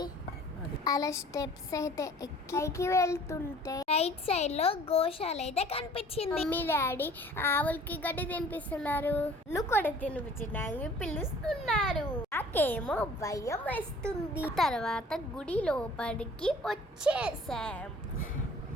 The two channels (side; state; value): both; normal; correlation 0.50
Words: అలా స్టెప్స్ అయితే ఎక్కి వెళ్తుంటే రైట్ సైడ్ లో గోశాల అయితే కనిపించింది. మమ్మీ డాడీ ఆవులకి గడ్డి తినిపిస్తున్నారు. నువ్వు కూడా తినిపించడానికి పిలుస్తున్నారు. నాకేమో భయం వేస్తుంది. తర్వాత గుడి లోపలికి వచ్చేసాం.